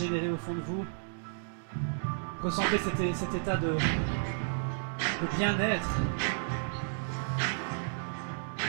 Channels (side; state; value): left; silent; digital silence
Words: au fond de vous. Ressentez cet état de bien-être.